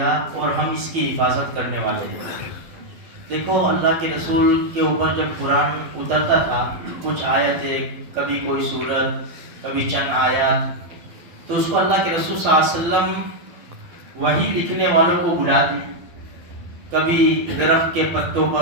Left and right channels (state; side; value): late; left; 12 ms